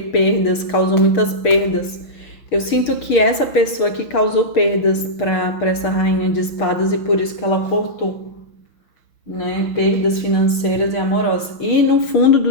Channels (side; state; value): right; late; 6.5 ms